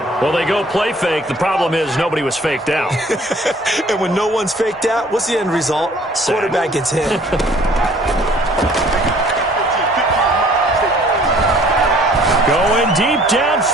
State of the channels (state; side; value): normal; both; correlation 0.55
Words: Well, they go play fake. The problem is nobody was faked out. And when no one's faked out, what's the end result? Quarterback gets hit. Going deep